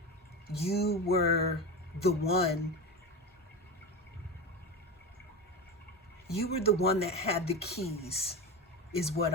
you were the one. You were the one that had the keys, is what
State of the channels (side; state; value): both; normal; correlation 0.23